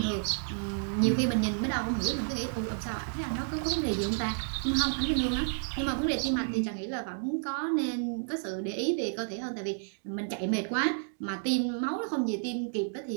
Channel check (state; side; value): silent; left; digital silence